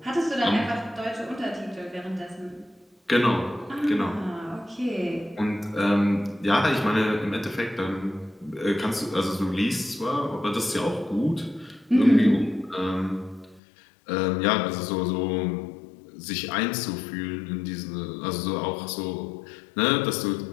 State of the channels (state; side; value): drops out; right; at 13.6 s